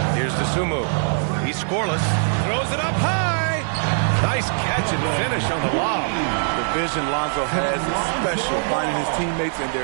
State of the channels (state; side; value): silent; left; digital silence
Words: Here's Dosunmu. He's scoreless. Throws it up high. Nice catch and finish on the lob. The vision Lonzo has is special, finding his teammates in